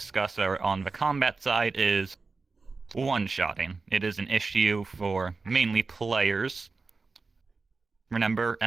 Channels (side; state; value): left; quieter; 4.1 dB